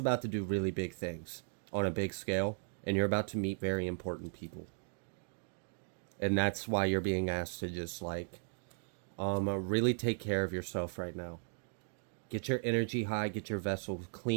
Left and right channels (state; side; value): silent; left; digital silence